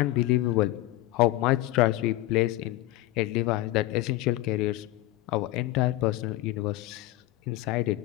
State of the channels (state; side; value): quieter; right; 17.0 dB